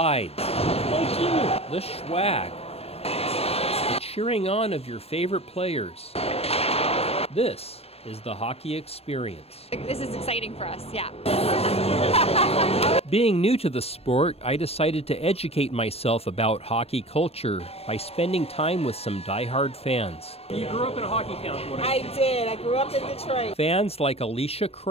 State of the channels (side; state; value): right; late; 0.29 ms